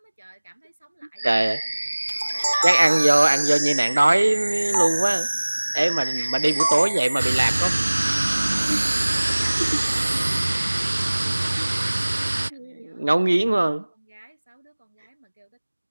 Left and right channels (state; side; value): inverted; both; correlation -1.00